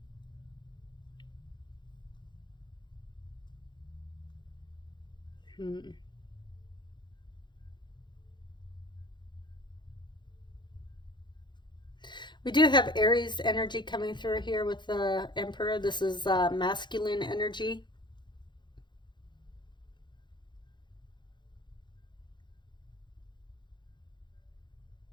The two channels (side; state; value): right; late; 0.22 ms